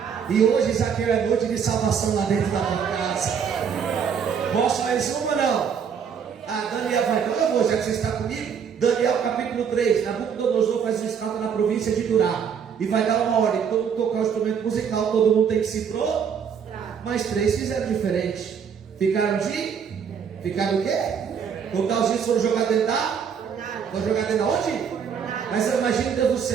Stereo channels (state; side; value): quieter; left; 7.2 dB